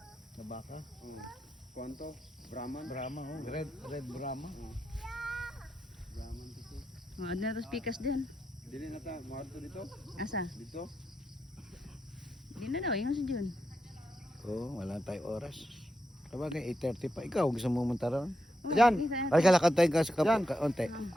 Na baka. Kwanto? Brahman? Brahma, oh. Red Brahma. Brahman dito. Mga na tos pikas din. Dili na ta, maadto dito. Asa? Dito. Di na daw, yung si Jun. Oo, wala tayong oras. Sabagay, 8:30 pa. Ikaw, gusto mo munta ron? Diyan. Ay, kalakad tayo ka sa Yan. kaunti.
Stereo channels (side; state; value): both; normal; correlation 0.85